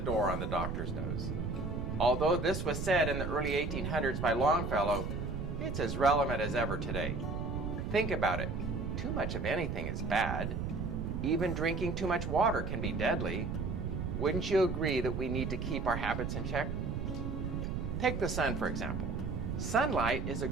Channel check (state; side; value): noise; right; rumble, 3 dB below the sound